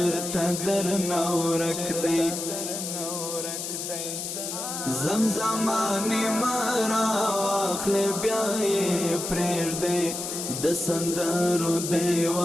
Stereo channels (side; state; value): left; noise; hiss, 5 dB below the sound